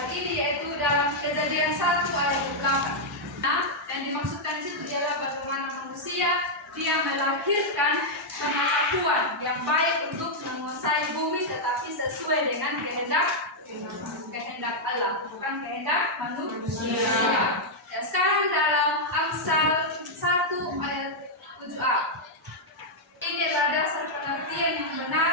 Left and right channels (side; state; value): both; normal; correlation -0.04